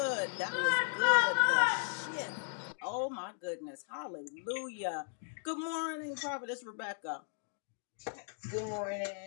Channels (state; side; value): silent; right; digital silence